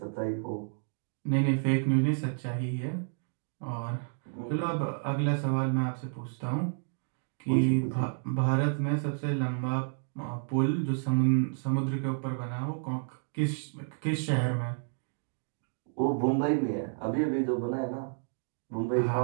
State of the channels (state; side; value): silent; left; digital silence